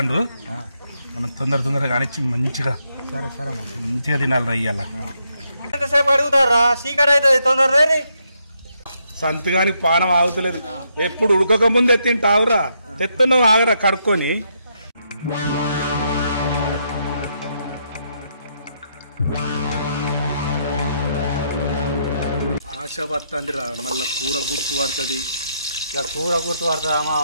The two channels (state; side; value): inverted; both; correlation -0.77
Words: మనం తొందరగా కానిచ్చి మంచిగా సరే సరే మంచిగా తినాలి రయ్యాల. ఎంతసేపు అడుగుతారా? చీకటి అవుతుంది, తొందరగా. సంతగానికి పానం ఆగుతలేదు. ఎప్పుడు ఉడకక ముందే తింటావురా, తెత్తున్నావు ఆగరా కడుక్కొని. ఆశ పడుతుందిరా, మళ్ళీ కూర గుర్తు పడుతుంది. ఇక కూర గుర్తు పడుతుందా మా?